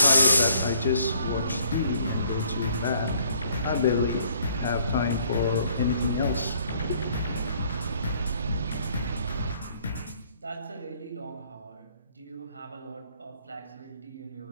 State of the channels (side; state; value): both; inverted; correlation -0.62